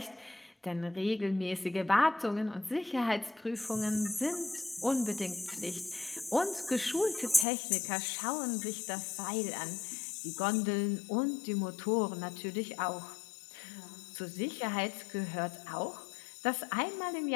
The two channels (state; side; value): drops out; right; at 7.5 s